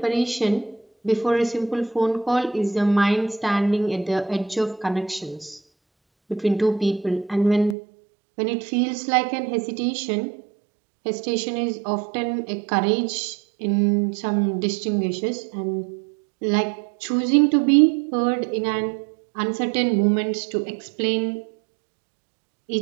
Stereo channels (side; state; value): left; drops out; at 7.8 s